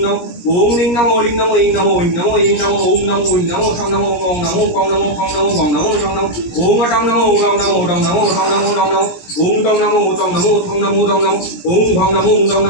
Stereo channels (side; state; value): right; late; 17 ms